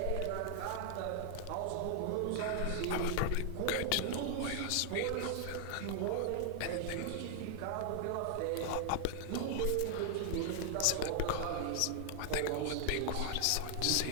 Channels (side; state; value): both; different; correlation 0.00